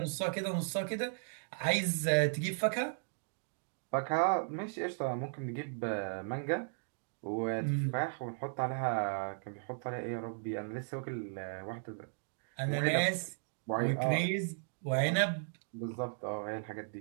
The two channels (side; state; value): left; silent; digital silence